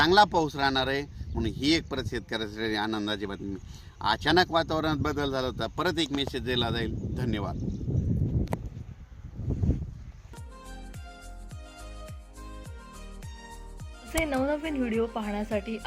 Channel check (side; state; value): both; identical; correlation 1.00